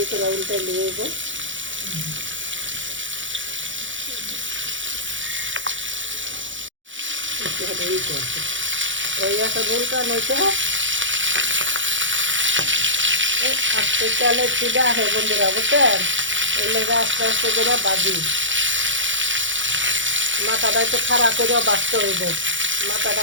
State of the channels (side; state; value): left; late; 0.56 ms